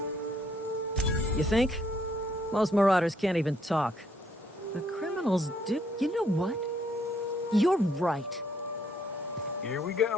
You think? Most marauders can't even talk. The criminals do. You know what? You're right. Here we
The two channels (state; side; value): normal; both; correlation 0.68